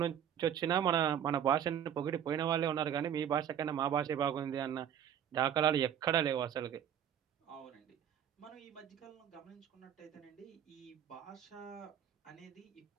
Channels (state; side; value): quieter; left; 9.5 dB